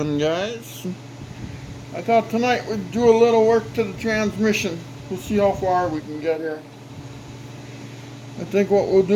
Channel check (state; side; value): identical; both; correlation 1.00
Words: guys. I thought tonight we'd do a little work to the transmission. We'll see how far we can get here. I think what we'll